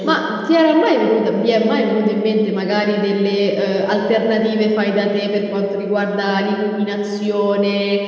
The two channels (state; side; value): identical; both; correlation 1.00